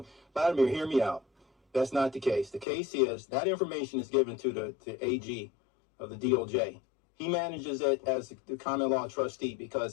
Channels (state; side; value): drops out; right; at 2.7 s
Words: Vladimir, hear me out. That's not the case. The case is that information is given to the AG of the DOJ. He manages it as the common law trustee because